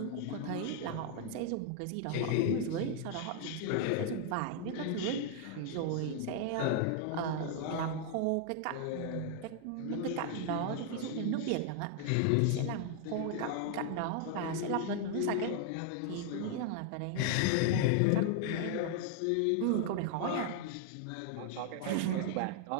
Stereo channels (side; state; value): both; different; correlation 0.00